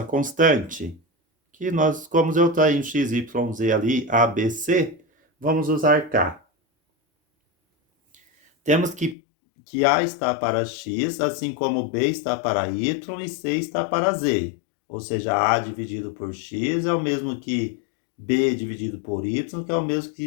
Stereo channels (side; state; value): right; drops out; at 9.2 s